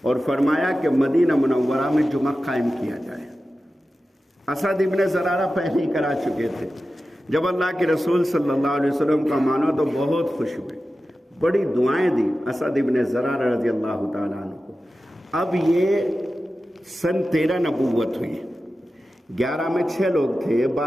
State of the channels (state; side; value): normal; both; correlation 0.93